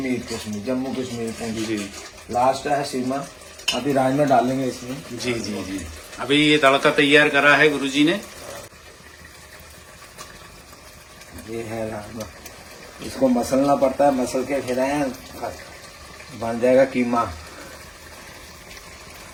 जम्मू कश्मीर पुंछ जी। लास्ट है सीमा। अभी राजमा डालेंगे इसमें। जी जी जी। अभी ये तड़का तैयार करा है गुरुजी ने। ये है राजमा, इसको मसलना पड़ता है, मसल के फिर बन जाएगा कीमा।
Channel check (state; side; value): identical; both; correlation 1.00